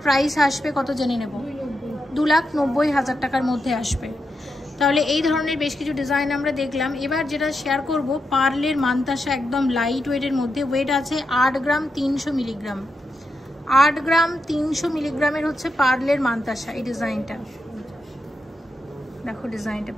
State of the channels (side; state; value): both; normal; correlation 0.86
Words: প্রাইস আসবে কত জেনে নেব? 2,90,000 টাকার মধ্যে আসবে। তাহলে এই ধরনের বেশ কিছু ডিজাইন আমরা দেখলাম। এবার যেটা শেয়ার করব পার্লের মানতাসা, একদম লাইট ওয়েটের মধ্যে, ওয়েট আছে 8 গ্রাম 300 মিলিগ্রাম, 8 গ্রাম 300 মিলিগ্রামের হচ্ছে পার্লের মানতাসা। এই ডিজাইনটা দেখো, ডিজাইনটা